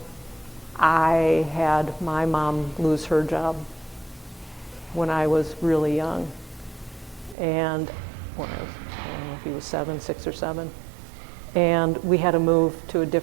I had my mom lose her job when I was really young. And when I don't know if he was 6 or 7. And we had to move to a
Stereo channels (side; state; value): left; drops out; at 7.4 s